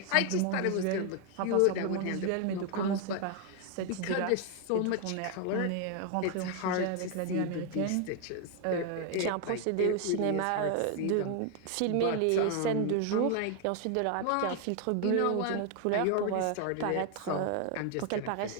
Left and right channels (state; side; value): different; both; correlation 0.01